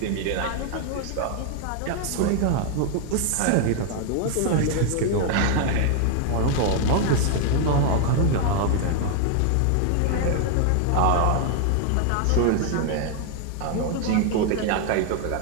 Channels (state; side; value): different; both; correlation 0.00